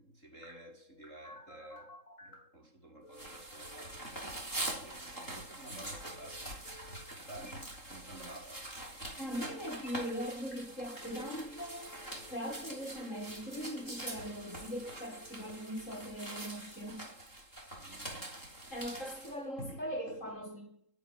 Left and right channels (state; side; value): late; right; 3.8 ms